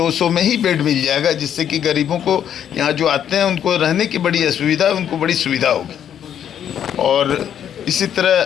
में ही बेड मिल जाएगा, जिससे कि गरीबों को यहाँ जो आते हैं उनको रहने की बड़ी असुविधा है, उनको बड़ी सुविधा होगी। और इसी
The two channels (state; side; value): quieter; right; 9.5 dB